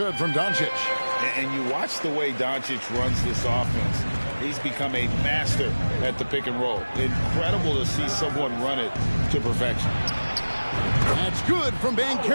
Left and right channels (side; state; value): both; inverted; correlation -1.00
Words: from Doncic. And you watch the way Doncic runs this offense. He's become a master at the pick and roll. Incredible to see someone run it to perfection. That's good from